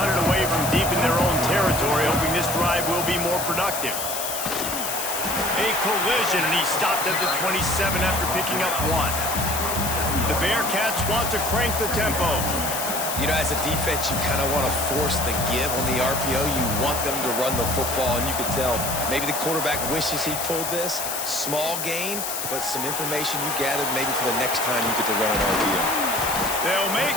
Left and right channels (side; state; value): left; noise; hiss, 3 dB below the sound